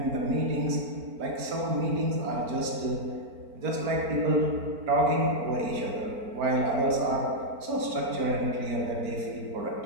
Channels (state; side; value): late; left; 4.4 ms